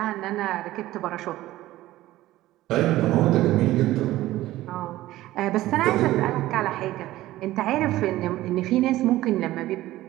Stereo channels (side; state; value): left; quieter; 15.9 dB